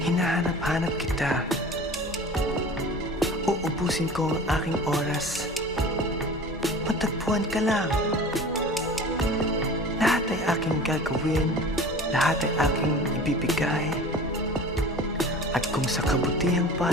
hinahanap-hanap kita. Uubusin ko ang aking oras. Matagpuan ka lang. Lahat ay aking gagawin, lahat ay aking ibibigay. At kung sa kabutihang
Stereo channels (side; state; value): both; normal; correlation 0.40